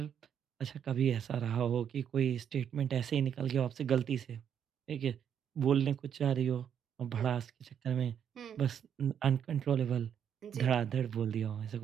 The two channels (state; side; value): quieter; left; 8.5 dB